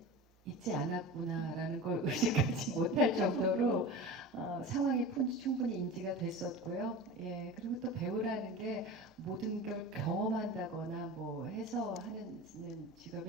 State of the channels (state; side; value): normal; both; correlation 0.32